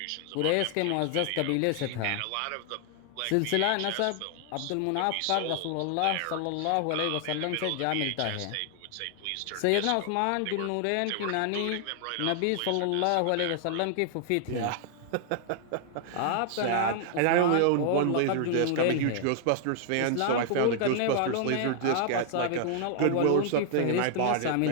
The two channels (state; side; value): different; both; correlation 0.00